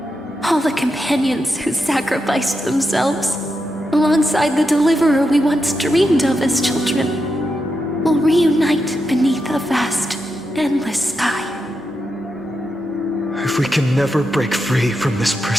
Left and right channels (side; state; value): both; normal; correlation 0.86